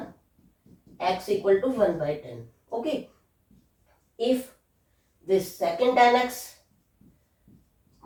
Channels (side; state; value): both; identical; correlation 1.00